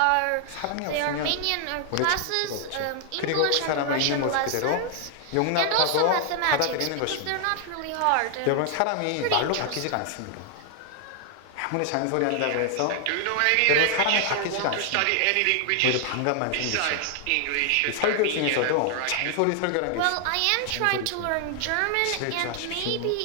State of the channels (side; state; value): both; different; correlation 0.00